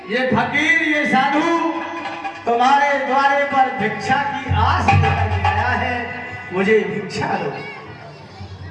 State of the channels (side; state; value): both; identical; correlation 1.00